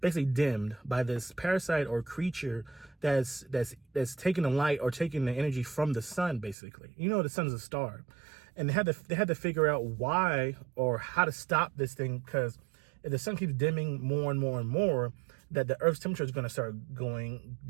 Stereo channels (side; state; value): left; drops out; at 6.6 s